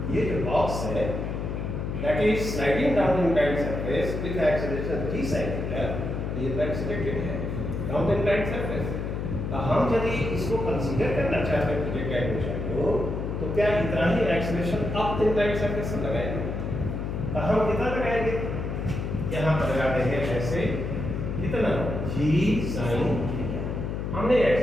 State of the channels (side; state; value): left; noise; hum, 3 dB below the sound